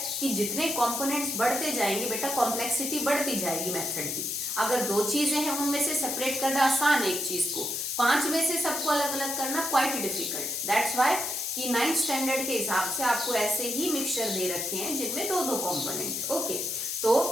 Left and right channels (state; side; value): noise; left; hiss, 2 dB below the sound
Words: कि जितने कंपोनेंट्स बढ़ते जाएंगे बेटा, कॉम्प्लेक्सिटी बढ़ती जाएगी मेथड की। अगर 2 चीजें हैं उनमें से सेपरेट करना आसान है एक चीज को, 5 में से सबको अलग अलग करना क्वाइट डिफिकल्ट। दैट्स व्हाई कि 9th स्टैंडर्ड के हिसाब से आपको ऐसे ही मिक्सचर दे रखे हैं जिनमें 2-2 कंपोनेंट। ओके, तो